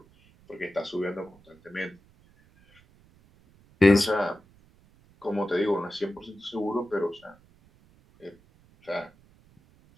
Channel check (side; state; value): right; noise; rumble, 29 dB below the sound